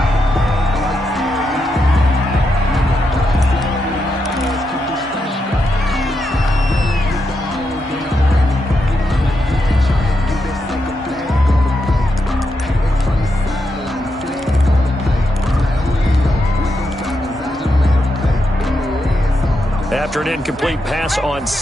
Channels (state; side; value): normal; both; correlation 0.84